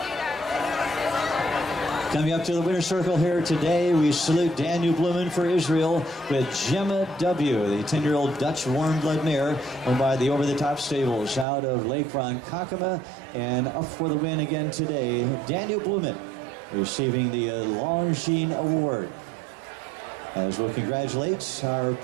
Coming up to the winner's circle here today, we salute Daniel Bluman for Israel with Gemma W., the 10-year-old Dutch warm blood mare owned by the over-the-top stables out of Lake Ronkonkoma. And up for the win again today, Daniel Bluman, receiving the Longines Award. As we'll congratulate our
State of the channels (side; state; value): left; drops out; at 11.5 s